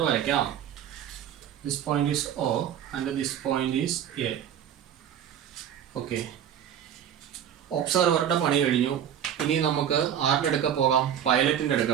വരയ്ക്കാം. This point is O and this point is A. Okay, ഒബ്സർവറുടെ പണി കഴിഞ്ഞു. ഇനി നമുക്ക് ആരുടെ അടുക്ക പോകാം? പൈലറ്റിൻ്റെ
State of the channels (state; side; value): quieter; left; 9.6 dB